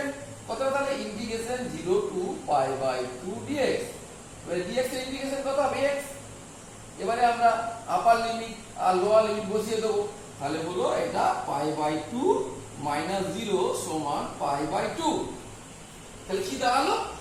কত, তাহলে ইন্টিগ্রেশন 0 to π/2 dx। এবারে dx এর ইন্টিগ্রেশন কত হবে x। এবারে আমরা আপার লিমিট আর লোয়ার লিমিট বসিয়ে দেব, তাহলে হলো এটা π/2 - 0 সমান π/2। তাহলে কি দাঁড়ালো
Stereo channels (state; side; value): identical; both; correlation 1.00